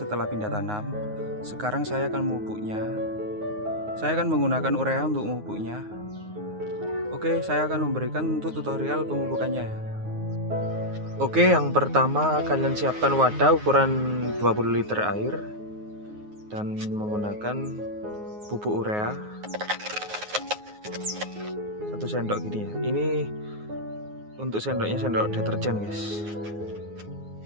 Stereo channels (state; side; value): late; left; 9.5 ms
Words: pindah tanam. Sekarang saya akan memupuknya. Saya akan menggunakan urea untuk memupuknya. Oke, saya akan memberikan untuk tutorial pemupukannya ya. Oke, yang pertama kalian siapkan wadah ukuran 20 liter air dan menggunakan pupuk urea 1 sendok gini ya. Ini untuk sendoknya sendok deterjen guys.